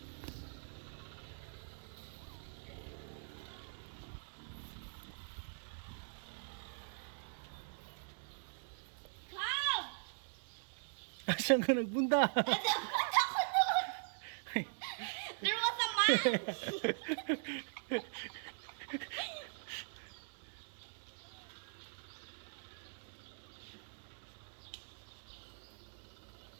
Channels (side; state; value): left; silent; digital silence